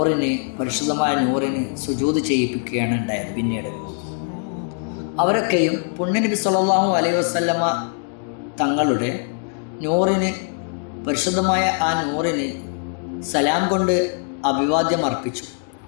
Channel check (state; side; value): silent; right; 56 dB below the other